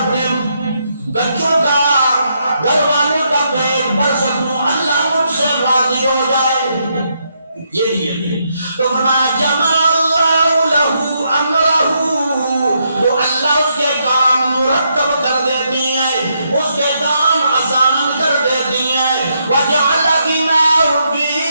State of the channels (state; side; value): inverted; both; correlation -0.78